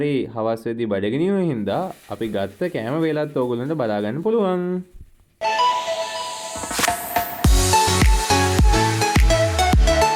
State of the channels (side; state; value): both; identical; correlation 1.00